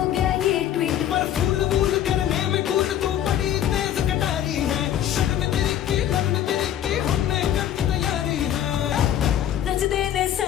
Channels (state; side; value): quieter; right; 10.9 dB